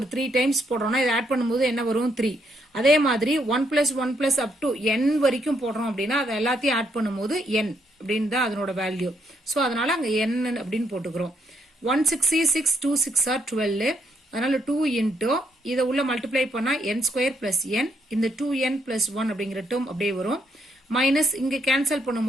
3 டைம்ஸ் போடுறோம்னா இதை ஆட் பண்ணும்போது என்ன வரும் 3 அதே மாதிரி 1 plus 1 plus up to n வரைக்கும் போடுறோம் அப்படின்னா அதை எல்லாத்தையும் ஆட் பண்ணும்போது n அப்படின்னு தான் அதனோட வேல்யூ ஸோ அதனால அங்கே n அப்படின்னு போட்டுக்கிறோம் 166 2 6 are 12 அதனால 2 into இதை உள்ள மல்டிப்ளை பண்ணா n ஸ்கொயர் பிளஸ் n இந்த 2n பிளஸ் 1 அப்படிங்கிற டேர்ம் அப்படியே வரும் மைனஸ் இங்க கேன்சல்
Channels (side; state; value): both; normal; correlation 0.74